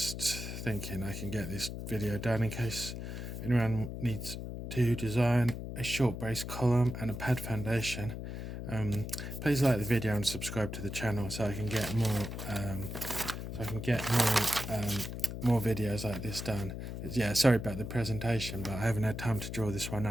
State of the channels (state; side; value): noise; left; hum, 7 dB below the sound